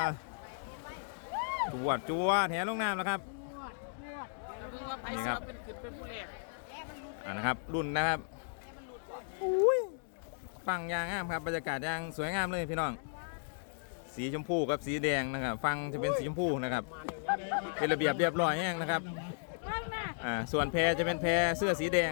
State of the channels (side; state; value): right; silent; digital silence